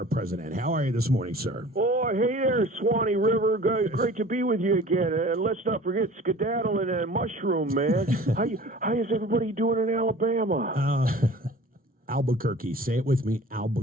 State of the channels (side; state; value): both; normal; correlation 0.44